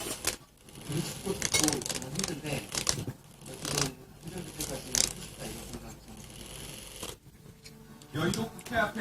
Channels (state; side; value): identical; both; correlation 1.00